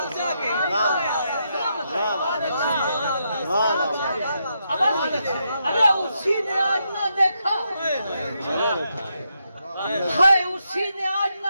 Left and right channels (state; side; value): inverted; both; correlation -0.81